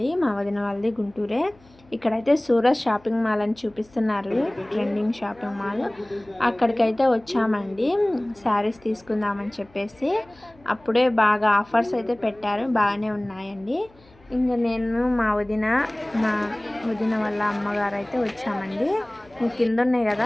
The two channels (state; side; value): noise; left; hum, 28 dB below the sound